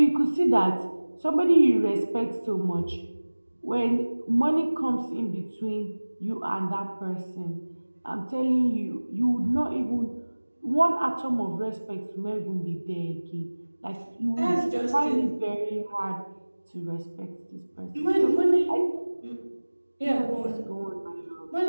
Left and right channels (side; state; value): both; inverted; correlation -1.00